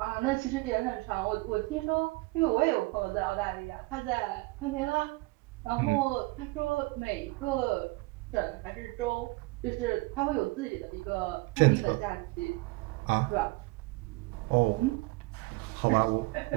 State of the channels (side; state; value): left; quieter; 23.5 dB